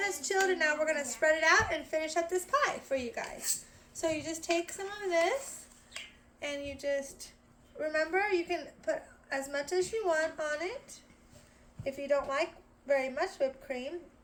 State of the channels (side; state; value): both; identical; correlation 1.00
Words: chilled, and now we're going to spread it out and finish up this pie for you guys. So you just take some of this, and you just, remember you can put as much as you want on it. If you don't like very much whipped cream,